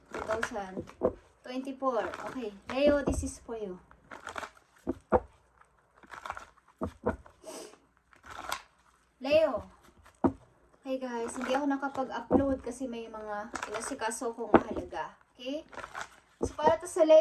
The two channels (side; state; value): both; identical; correlation 1.00